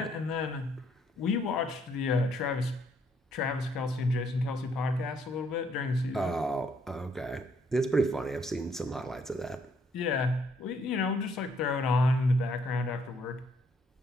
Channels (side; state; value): both; normal; correlation 0.69